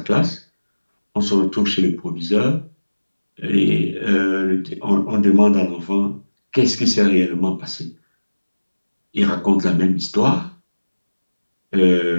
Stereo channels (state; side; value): inverted; both; correlation -1.00